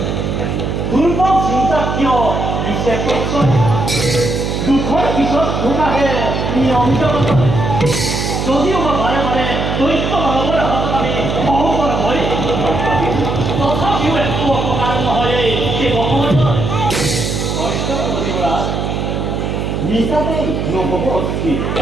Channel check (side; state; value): right; noise; hum, 2 dB below the sound